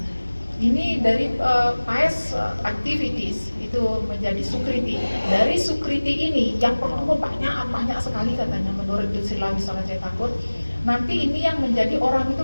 ini dari pious activities itu menjadi sukriti. Dari sukriti ini yang pertama banyak sekali katanya menurut Srila Wiswanath Thakur. Nanti ini yang menjadi orang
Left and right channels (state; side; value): inverted; both; correlation -1.00